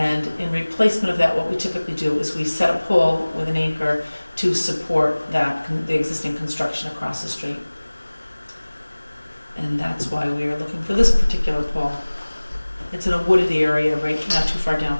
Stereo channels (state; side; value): inverted; both; correlation -1.00